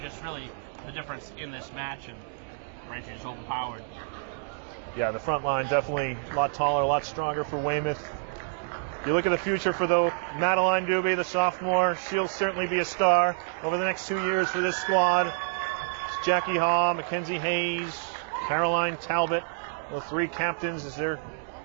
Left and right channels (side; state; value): left; silent; digital silence